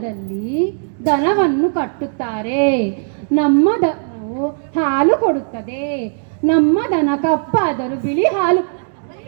ದನವನ್ನು ಕಟ್ಟುತ್ತಾರೆ. ನಮ್ಮ ದನವು ಹಾಲು ಕೊಡುತ್ತದೆ. ನಮ್ಮ ದನ ಕಪ್ಪಾದರೂ ಬಿಳಿ ಹಾಲು.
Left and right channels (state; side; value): silent; left; digital silence